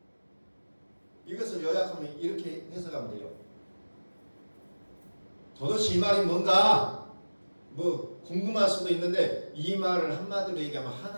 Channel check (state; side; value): inverted; both; correlation -1.00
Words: 이것을 요약하면 이렇게 해석하면 돼요. 도대체 이 말이 뭔가 뭐 궁금할 수도 있는데 이 말을 한마디로 얘기하면